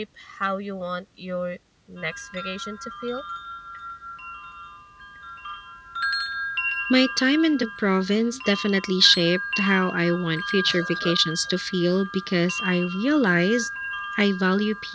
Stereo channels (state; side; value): identical; both; correlation 1.00